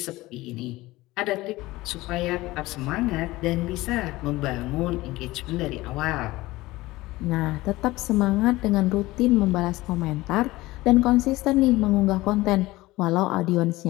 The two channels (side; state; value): right; quieter; 19.0 dB